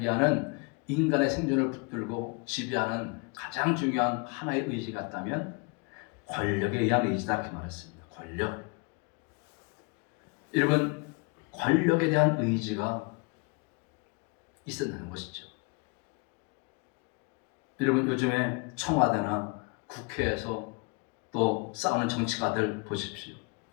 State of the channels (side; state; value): right; quieter; 30.8 dB